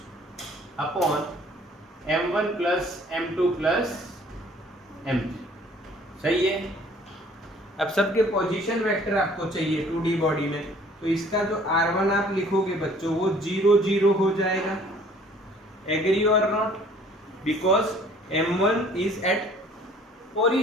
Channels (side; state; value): both; normal; correlation 0.55